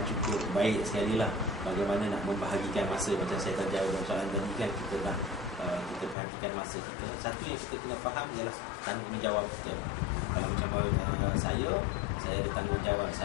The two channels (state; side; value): drops out; right; at 6.2 s